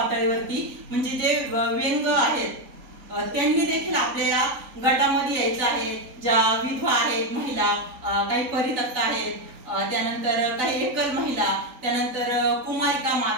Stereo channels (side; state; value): left; late; 3.9 ms